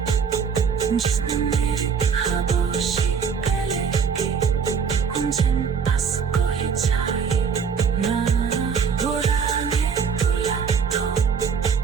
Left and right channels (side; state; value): left; quieter; 6.3 dB